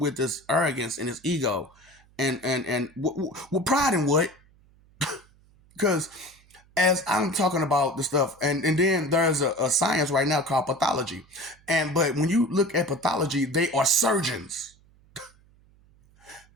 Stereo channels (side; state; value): right; noise; hum, 30 dB below the sound